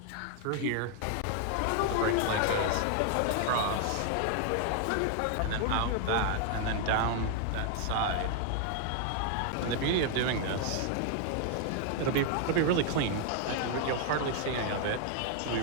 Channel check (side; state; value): both; different; correlation 0.00